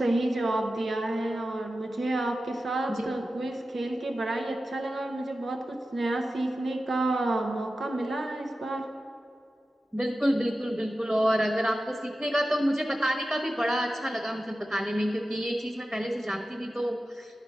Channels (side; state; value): both; normal; correlation 0.93